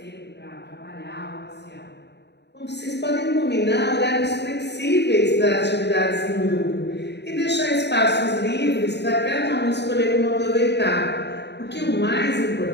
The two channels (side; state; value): right; late; 0.50 ms